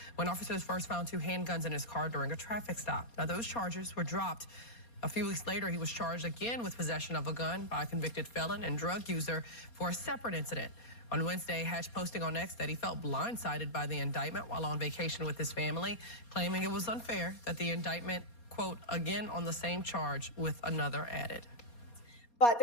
when officers first found 2 handguns in his car during a traffic stop. Now, those charges were dropped. A few weeks later, he was charged again with possession of a gun by a convicted felon and drug user for a separate incident. On Wednesday, Hatch posting on X that he felt blindsided by the indictment while on vacation with his family, claiming it was unfair that the indictment, quote, again on the same charge with another added. But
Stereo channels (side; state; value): right; late; 4.2 ms